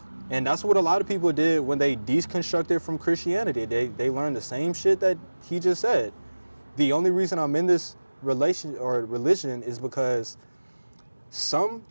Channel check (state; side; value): inverted; both; correlation -1.00